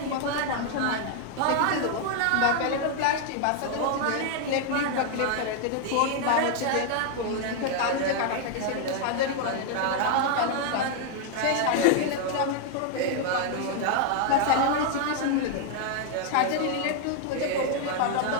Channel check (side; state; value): both; different; correlation 0.00